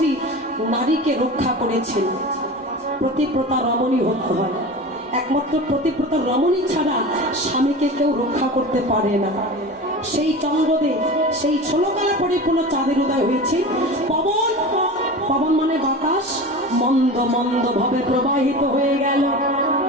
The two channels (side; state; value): both; normal; correlation 0.31